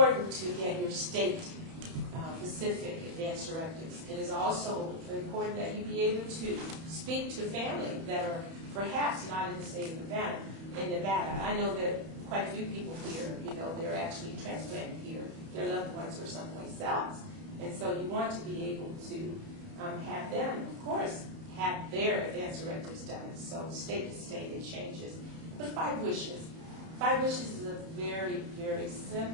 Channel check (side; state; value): left; late; 31 ms